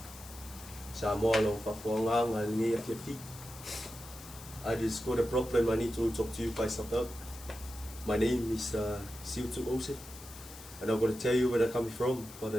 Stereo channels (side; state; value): left; noise; hiss, 16 dB below the sound